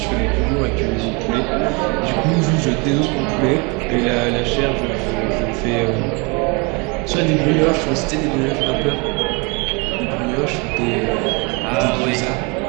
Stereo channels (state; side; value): quieter; left; 30.2 dB